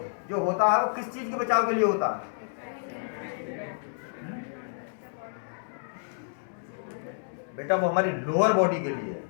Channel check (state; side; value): silent; right; digital silence